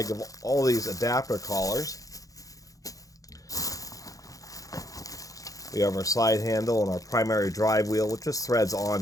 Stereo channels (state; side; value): late; right; 0.17 ms